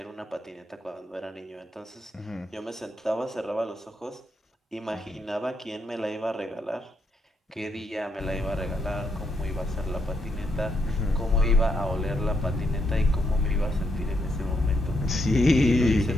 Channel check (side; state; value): both; normal; correlation 0.78